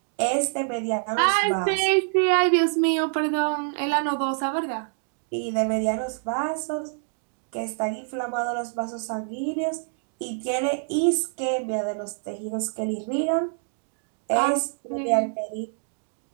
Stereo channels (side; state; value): left; silent; 61 dB below the other